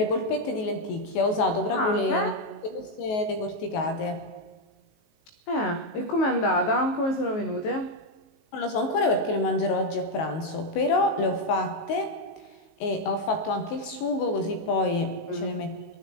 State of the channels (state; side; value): late; right; 19 ms